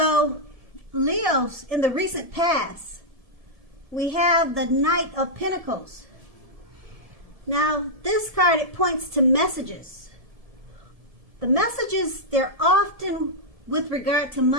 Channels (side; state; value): left; late; 1.7 ms